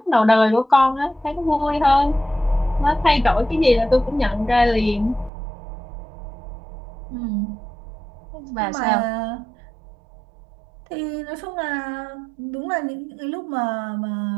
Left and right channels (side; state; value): left; drops out; at 5.3 s